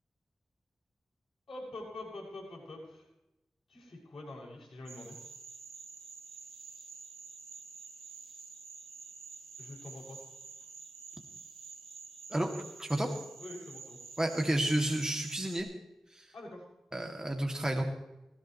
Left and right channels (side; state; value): both; normal; correlation 0.92